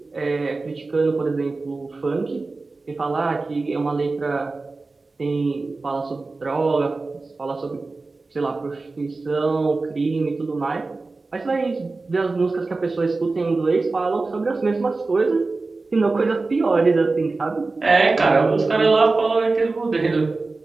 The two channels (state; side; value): quieter; left; 3.6 dB